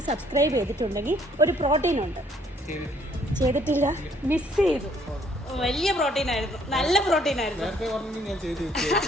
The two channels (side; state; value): both; normal; correlation 0.64